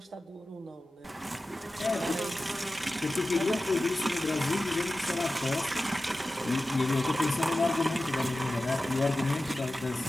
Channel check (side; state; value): both; normal; correlation 0.95